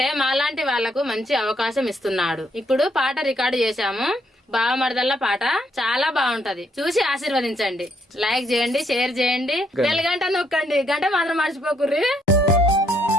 మాలాంటి వాళ్లకు మంచి అవకాశం ఇస్తున్నాడు. ఇప్పుడు పాట రికార్డు చేశాము. బావమరదల్ల పాట చాలా బాగుంటది. చూసి ఆశీర్వదించండి. లైక్ చేయండి, షేర్ చేయండి, బెల్ గంట నొక్కండి. గంట మాత్రం మర్చిపోకుర్రి.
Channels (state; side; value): normal; both; correlation 0.72